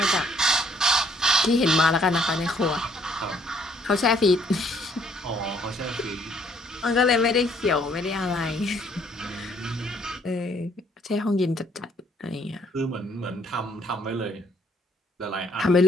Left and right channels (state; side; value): normal; both; correlation 0.64